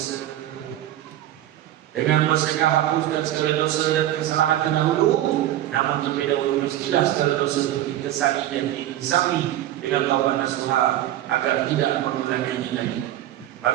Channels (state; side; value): quieter; left; 13.3 dB